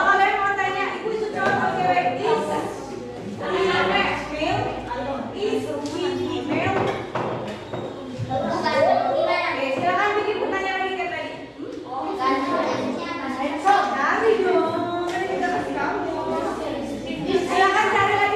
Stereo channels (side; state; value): both; identical; correlation 1.00